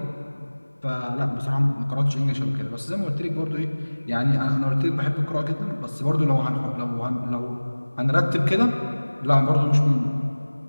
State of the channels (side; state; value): both; inverted; correlation -1.00